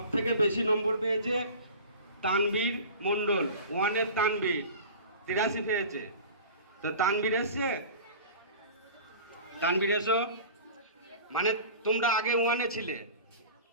থেকে বেশি নম্বর পেয়েছে তানবীর মণ্ডল, ওয়ানের তানবীর 83 পেয়েছে। তো তানবীর এসছে, তানবীর এসো, মানে তোমরা আগে ওয়ানে ছিলে।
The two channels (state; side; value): inverted; both; correlation -0.38